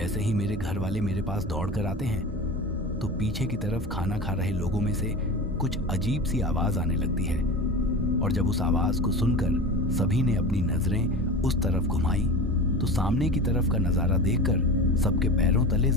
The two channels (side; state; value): both; normal; correlation 0.30